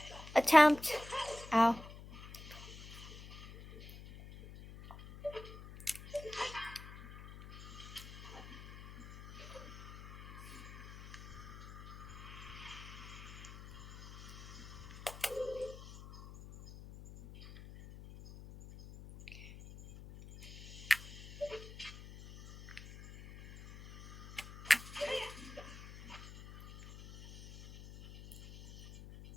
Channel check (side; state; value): left; noise; hum, 15 dB below the sound